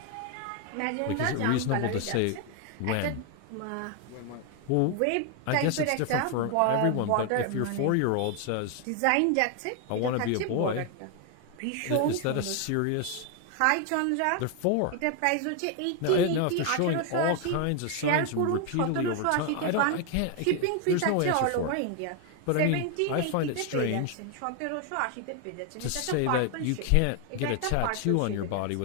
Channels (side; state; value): both; different; correlation 0.01